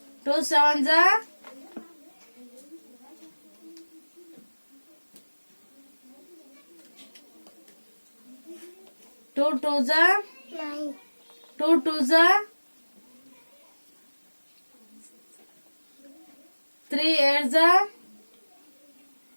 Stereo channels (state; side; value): inverted; both; correlation -1.00